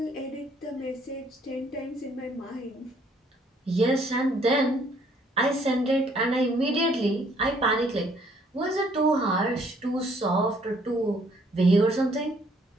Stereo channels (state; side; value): normal; both; correlation 0.64